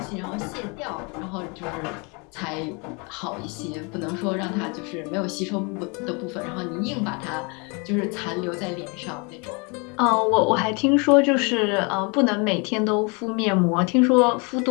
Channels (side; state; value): right; quieter; 31.3 dB